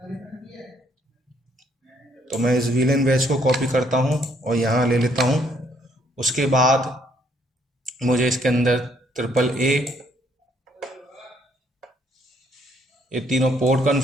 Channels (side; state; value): both; normal; correlation 0.68